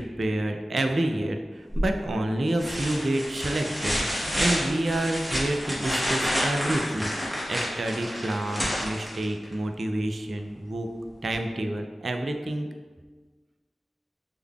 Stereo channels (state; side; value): normal; both; correlation 0.95